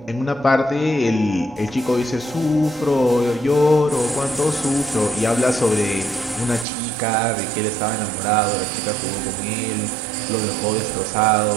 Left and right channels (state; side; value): drops out; left; at 6.7 s